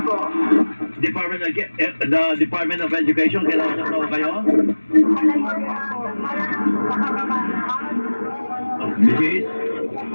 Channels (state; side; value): inverted; both; correlation -1.00